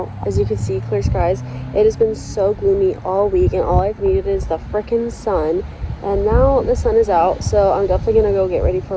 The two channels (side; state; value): both; identical; correlation 1.00